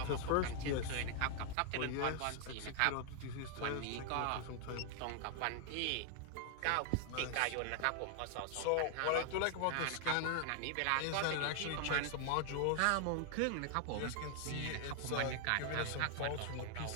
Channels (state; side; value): different; both; correlation 0.00